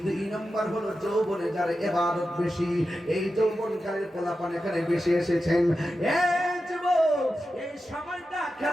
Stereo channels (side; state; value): both; normal; correlation 0.91